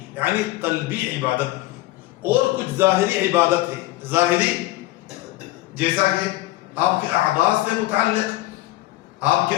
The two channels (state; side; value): quieter; right; 17.6 dB